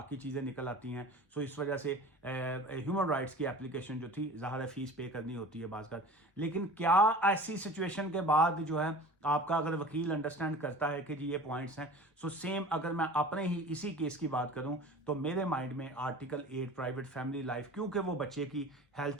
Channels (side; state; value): both; normal; correlation 0.40